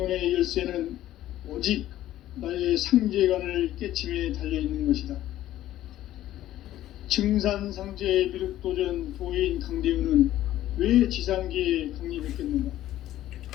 열쇠는 오직 나의 상제관을 깨침에 달려있는 것이다. 증산상제 미륵도전 도인 강대훈은 왜 지상계에 강림했겠는가?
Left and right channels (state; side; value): quieter; right; 13.6 dB